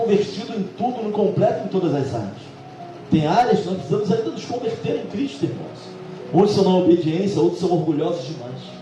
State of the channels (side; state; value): both; identical; correlation 1.00